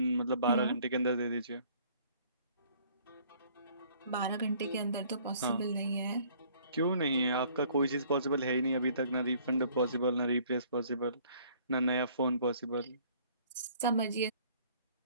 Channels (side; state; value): both; inverted; correlation -0.58